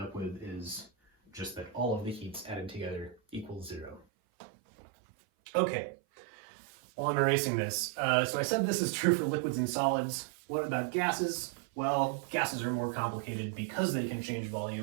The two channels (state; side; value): drops out; left; at 4.0 s